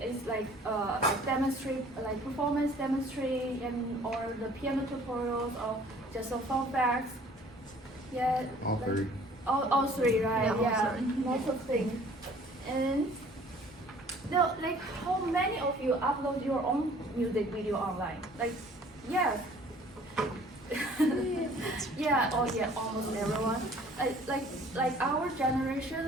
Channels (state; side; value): normal; both; correlation 0.53